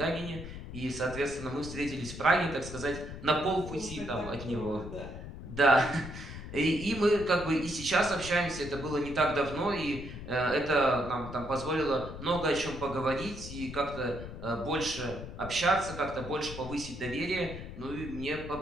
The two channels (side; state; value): left; noise; rumble, 10 dB below the sound